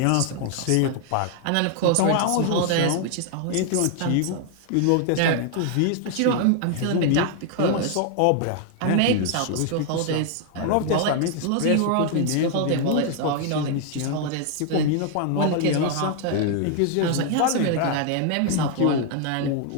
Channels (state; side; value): different; both; correlation 0.00